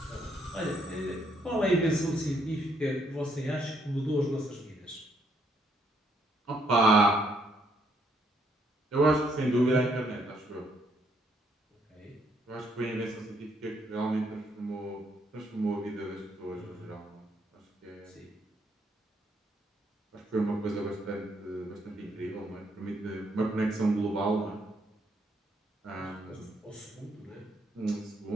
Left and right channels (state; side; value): normal; both; correlation 0.72